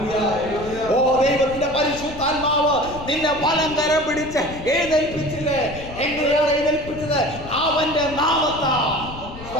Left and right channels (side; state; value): left; noise; rumble, 13 dB below the sound